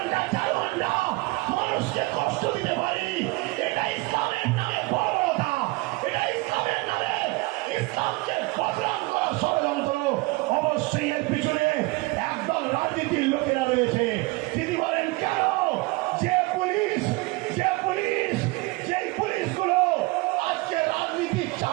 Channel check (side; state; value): left; quieter; 23.6 dB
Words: 4 ঘন্টা মানুষকে কষ্ট দিতে পারি। এটা ইসলামের নামে বর্বরতা, এটা ইসলামের নামে ইসলামকে বদনাম করা ষড়যন্ত্র। অবশ্যই এর পিছনে একদল রাজনীতির লোকেরা রয়েছে। তিনি বলেন কেন? যে পুলিশগুলো আজকে রাজনীতির